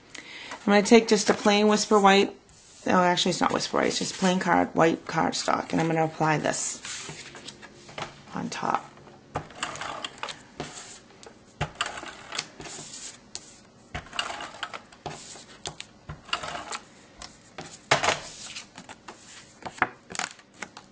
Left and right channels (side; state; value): both; identical; correlation 1.00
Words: going to take just a plain Whisper White, no actually it's not Whisper White, it's just plain white cardstock, and I'm going to apply this on top.